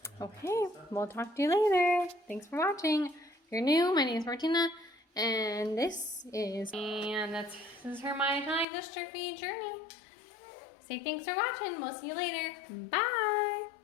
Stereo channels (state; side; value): drops out; right; at 8.7 s